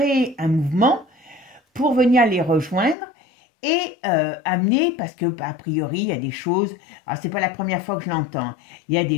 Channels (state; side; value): drops out; right; at 3.0 s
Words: un mouvement pour venir les rejoindre et amener, parce que a priori il y a des choses, alors c'est pas la première fois que je l'entends, il y a